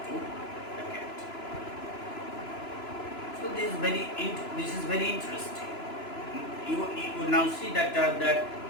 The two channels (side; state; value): right; late; 3.0 ms